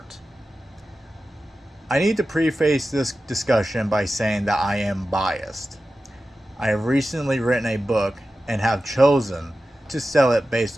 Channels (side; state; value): both; normal; correlation 0.93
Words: I need to preface this discussion by saying that I am biased. I have recently written a book and have chosen to sell it